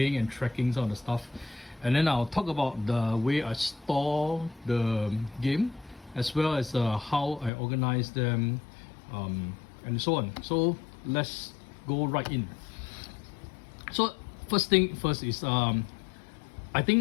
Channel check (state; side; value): drops out; right; at 7.5 s